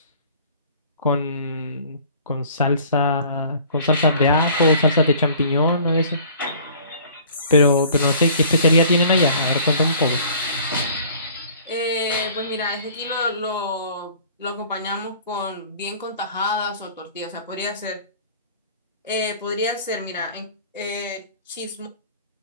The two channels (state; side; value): inverted; both; correlation -0.50